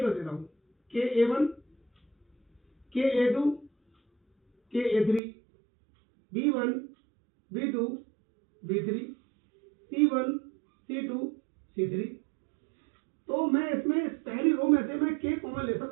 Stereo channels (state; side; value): drops out; left; at 5.2 s